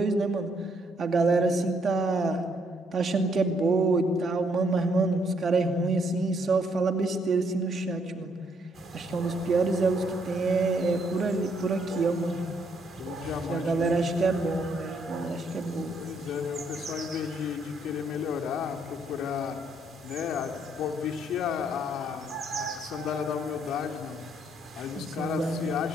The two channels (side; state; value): both; normal; correlation 0.71